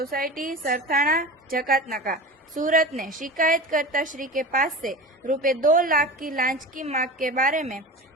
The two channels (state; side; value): normal; both; correlation 0.32